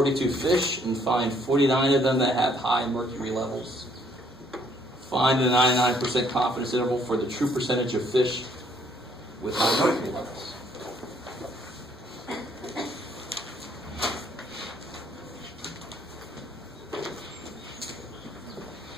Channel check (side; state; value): both; normal; correlation 0.65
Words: fish and find 49 of them that have high mercury levels. Find a 99% confidence interval for the true percentage of fish with high mercury levels.